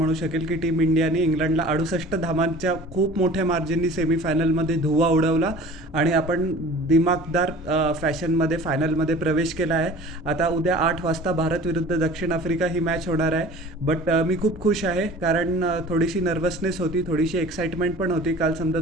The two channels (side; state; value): both; normal; correlation 0.43